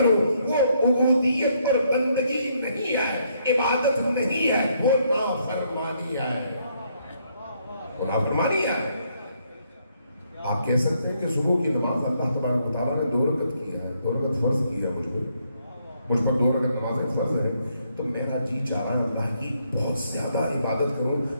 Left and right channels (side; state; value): both; inverted; correlation -0.72